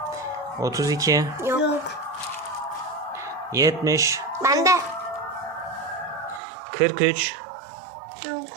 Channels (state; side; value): drops out; left; at 6.4 s